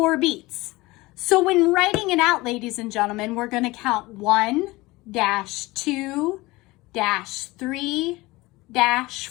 beats. So when writing it out, ladies and gentlemen, we're going to count 1, 2 3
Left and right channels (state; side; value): quieter; right; 21.0 dB